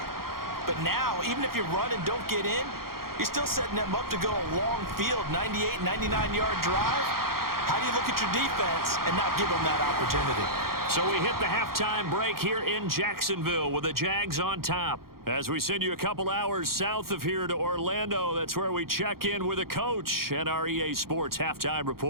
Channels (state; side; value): late; left; 0.93 ms